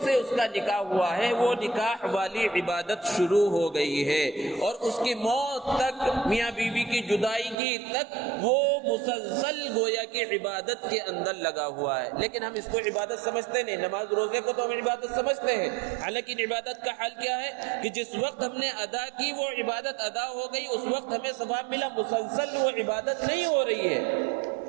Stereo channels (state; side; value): drops out; left; at 7.6 s